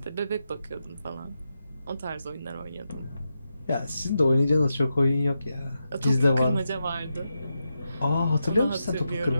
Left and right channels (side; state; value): both; inverted; correlation -0.87